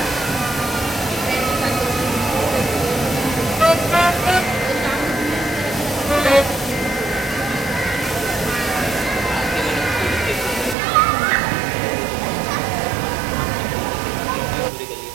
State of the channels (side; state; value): left; drops out; at 10.8 s